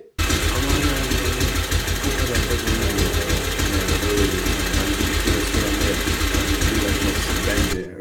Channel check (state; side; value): identical; both; correlation 1.00